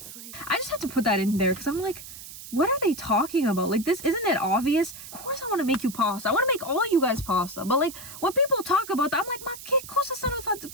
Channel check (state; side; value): noise; right; hiss, 13 dB below the sound